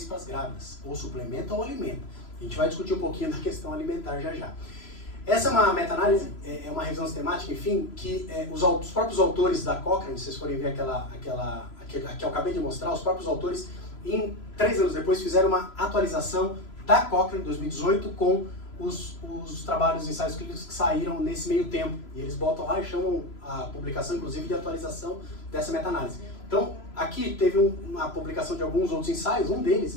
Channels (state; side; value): late; right; 3.0 ms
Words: para as grávidas, ou suplementa ou alimenta. A gente vai discutir um pouquinho da questão alimentar já já. Essa é uma meta-análise, é uma revisão sistemática, enfim, que os próprios autores da Cochrane, se vocês forem ver aquela que eu acabei de mostrar, os próprios autores, 3 anos depois, fizeram uma atualização da Cochrane, 2018, com os trabalhos, os ensaios clínicos que saíram nesse meio tempo. E eles botam lá e chamam a publicação, inclusive, de atualização dessa meta-análise. Então, aqui teve uma publicação de alguns outros ensaios, um deles,